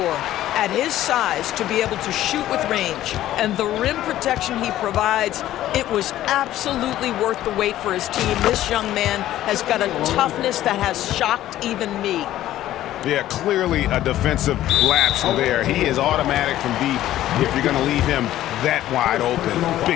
At his size, to be able to shoot with range and the rim protection he provides, it was absolutely worth the wait for his team. This young man has got a toughness that has shocked even me. Yeah, clearly a defensive lapse there. He is automatic from deep if you're going to leave him that wide open.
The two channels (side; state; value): right; quieter; 13.6 dB